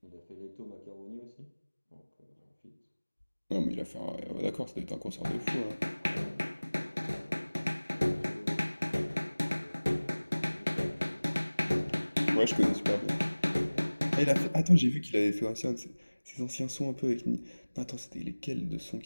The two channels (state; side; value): inverted; both; correlation -1.00